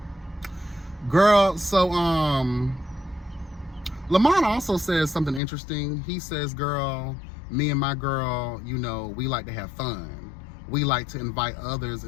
Girl, so, Lamont also says something interesting. He says, girl, me and my girl, you know, we like to have fun. We like to invite others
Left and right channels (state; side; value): drops out; right; at 5.4 s